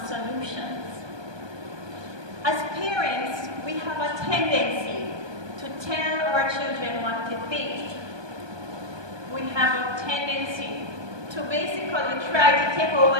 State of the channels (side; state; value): left; late; 1.2 ms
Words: solutions. As parents, we have a tendency to tell our children what to think. We have a tendency to basically try to take over